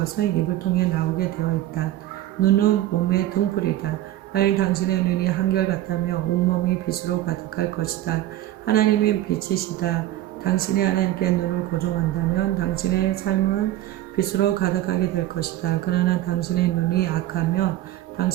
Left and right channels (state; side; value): quieter; left; 14.3 dB